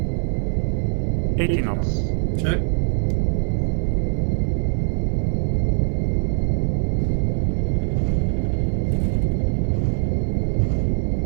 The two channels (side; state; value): left; silent; 64 dB below the other